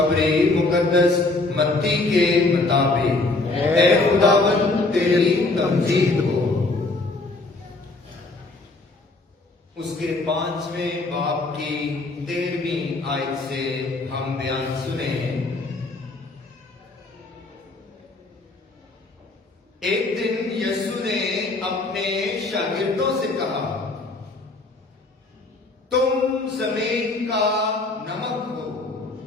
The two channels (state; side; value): quieter; right; 3.2 dB